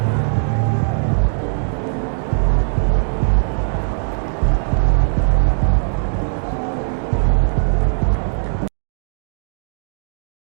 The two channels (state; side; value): silent; left; digital silence